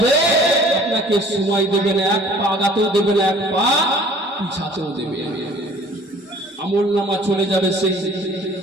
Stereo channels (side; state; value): both; normal; correlation 0.52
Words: আপনাকে সময় দেবে না, এক পা আগাতেও দেবে না, এক পা পিছাতেও দেবে না। আমলনামা চলে যাবে সেই